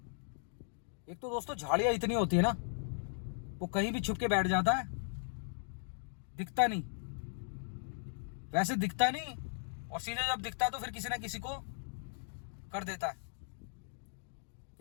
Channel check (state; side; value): silent; right; digital silence